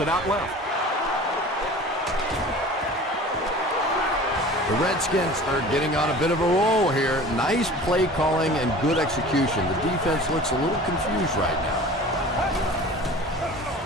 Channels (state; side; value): normal; both; correlation 0.41